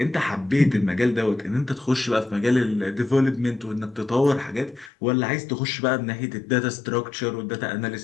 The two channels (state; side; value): drops out; right; at 4.9 s